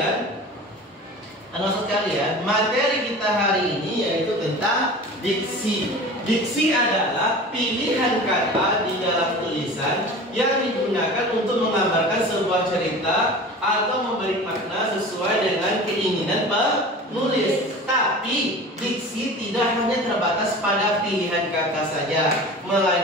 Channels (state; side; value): normal; both; correlation 0.37